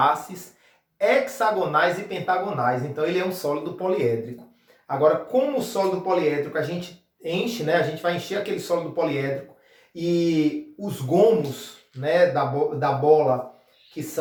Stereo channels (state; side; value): identical; both; correlation 1.00